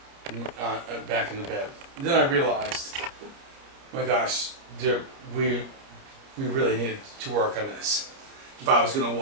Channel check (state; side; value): late; left; 29 ms